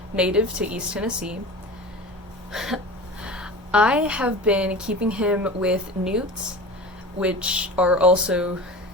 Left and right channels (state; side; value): normal; both; correlation 0.33